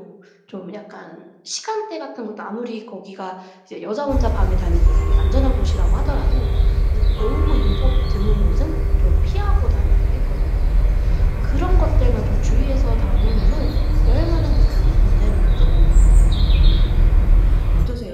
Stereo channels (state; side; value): identical; both; correlation 1.00